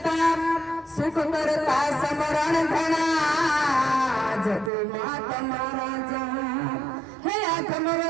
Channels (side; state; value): left; drops out; at 4.7 s